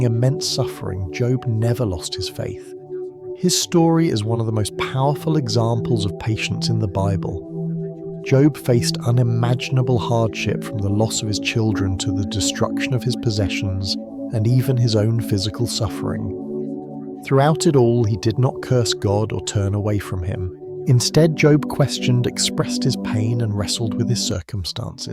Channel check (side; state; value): both; identical; correlation 1.00